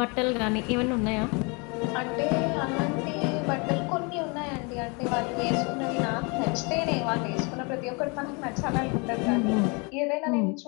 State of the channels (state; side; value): quieter; right; 31.2 dB